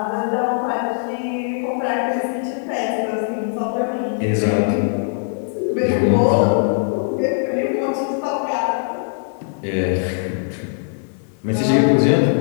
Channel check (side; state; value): right; silent; 63 dB below the other